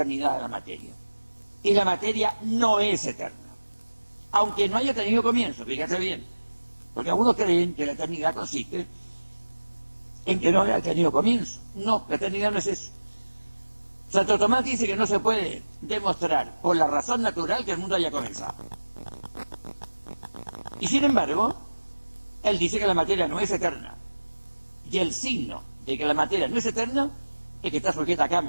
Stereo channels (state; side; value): inverted; both; correlation -1.00